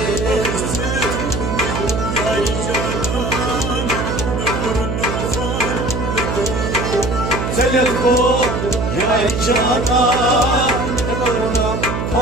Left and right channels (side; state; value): right; noise; hum, 2 dB below the sound